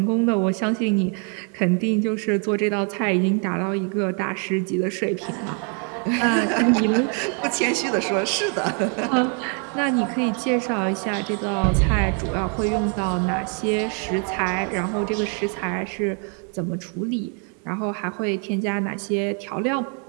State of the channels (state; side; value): quieter; left; 39.4 dB